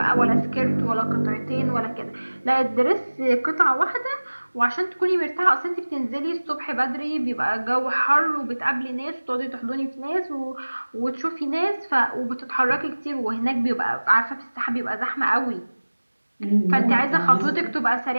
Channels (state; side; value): inverted; both; correlation -1.00